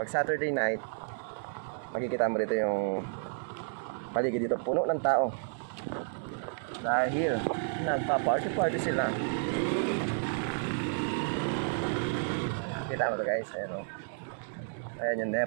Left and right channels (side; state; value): left; silent; digital silence